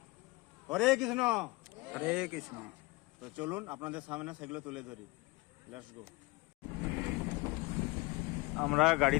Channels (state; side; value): quieter; right; 23.2 dB